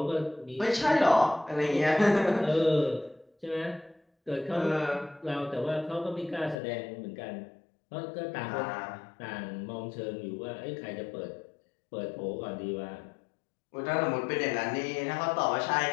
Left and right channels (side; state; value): right; drops out; at 6.6 s